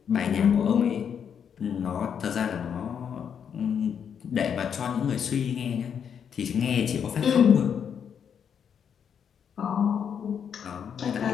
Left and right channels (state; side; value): quieter; right; 7.7 dB